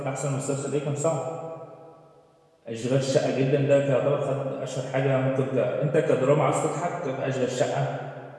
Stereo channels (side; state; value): both; identical; correlation 1.00